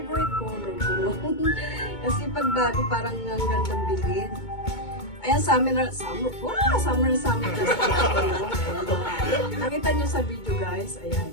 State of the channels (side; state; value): right; late; 2.2 ms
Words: color ko. Kasi pag bago parang ang gandang bilhin. Ayan, summer na summer. Nakita nyo sa video guys, ayan,